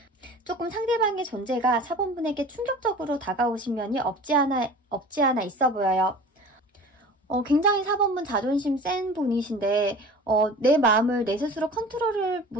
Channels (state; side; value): normal; both; correlation 0.40